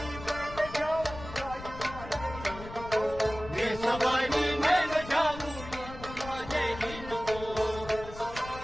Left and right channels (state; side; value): noise; left; rumble, 13 dB below the sound